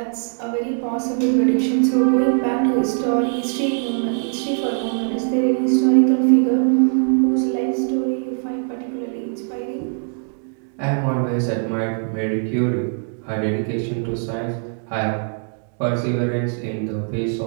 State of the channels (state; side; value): silent; left; 56 dB below the other